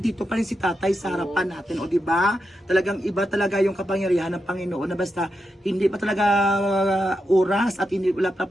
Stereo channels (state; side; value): normal; both; correlation 0.87